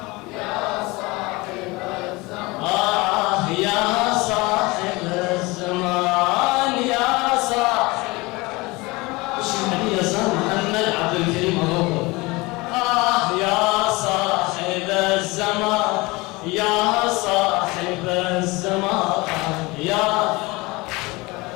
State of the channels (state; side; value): quieter; right; 23.5 dB